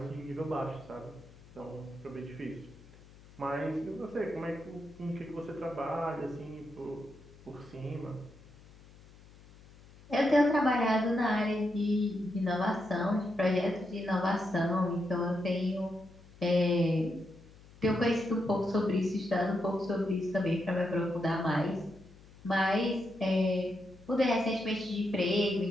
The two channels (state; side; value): noise; left; hum, 23 dB below the sound